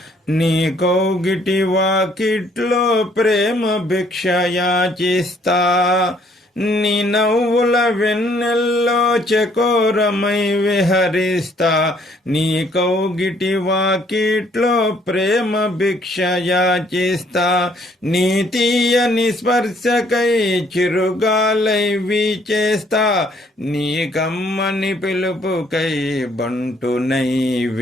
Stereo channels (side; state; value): both; normal; correlation 0.64